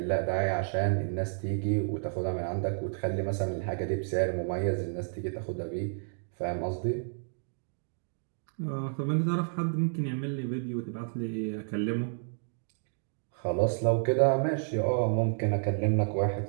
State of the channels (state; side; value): silent; left; digital silence